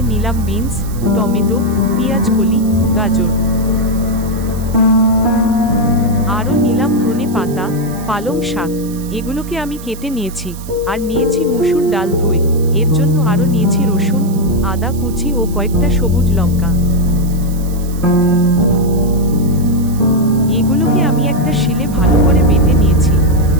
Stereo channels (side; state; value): right; noise; hiss, 18 dB below the sound